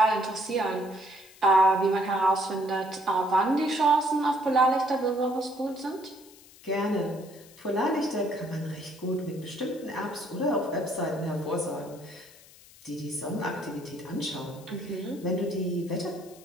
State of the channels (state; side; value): noise; left; hiss, 23 dB below the sound